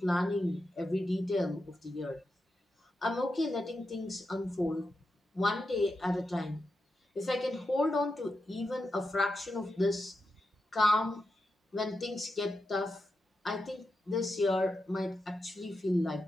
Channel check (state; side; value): normal; both; correlation 0.88